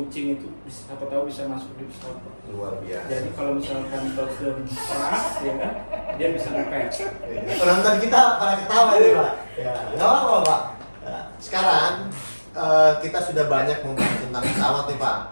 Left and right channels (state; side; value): inverted; both; correlation -1.00